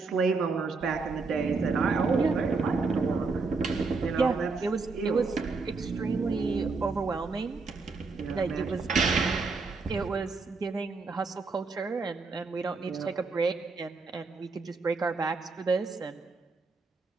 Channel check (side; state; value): left; quieter; 4.2 dB